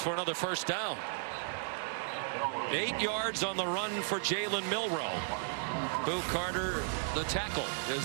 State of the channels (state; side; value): silent; left; 55 dB below the other